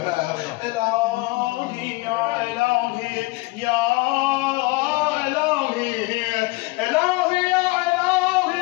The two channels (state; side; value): quieter; right; 23.6 dB